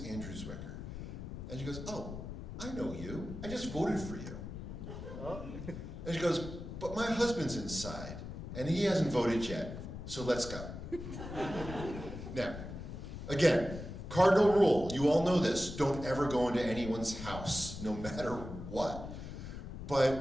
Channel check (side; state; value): left; noise; rumble, 9 dB below the sound